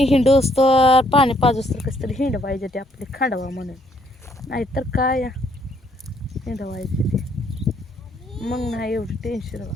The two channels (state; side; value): normal; both; correlation 0.68